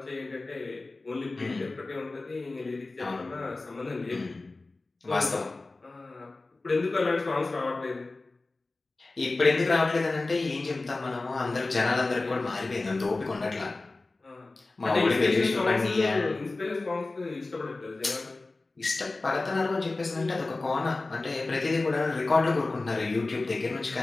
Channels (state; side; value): quieter; right; 3.3 dB